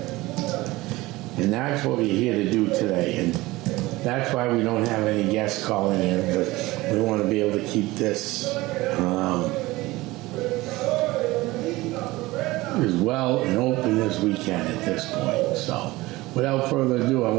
And that's what we're here to do today. And that's why we don't have any guests calling in, because we want to be able to keep this as well and open as we can at this point. So, without further ado, I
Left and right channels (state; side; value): quieter; left; 19.8 dB